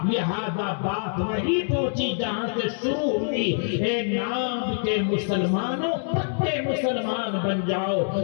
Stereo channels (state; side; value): silent; right; digital silence